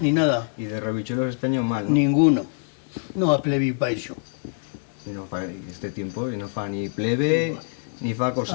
ni nada. Y de rebichuelos este año mal, ¿no? Ninguno. No a plebi pa eso. Y no fa este tiempo, y no fa ni plebe, ni fa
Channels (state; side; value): silent; right; 62 dB below the other